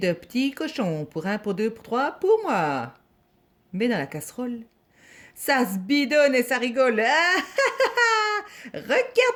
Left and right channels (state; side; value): identical; both; correlation 1.00